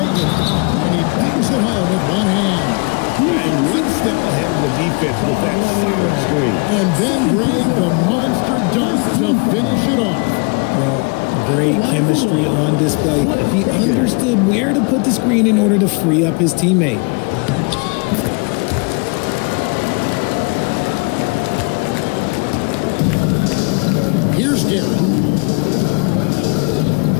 and he bangs it home with one hand. And one step ahead of the defense with that solid screen. And then Greg, the monster dunk to finish it off. Well, Great chemistry on display. He understood where to put the screen in order to free up his teammate. Here's Guerin.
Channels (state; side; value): quieter; right; 32.9 dB